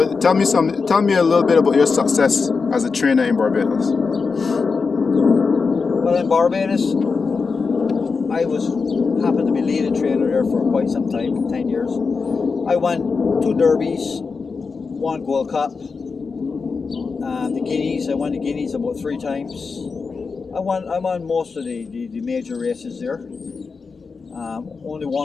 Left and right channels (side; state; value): right; quieter; 4.8 dB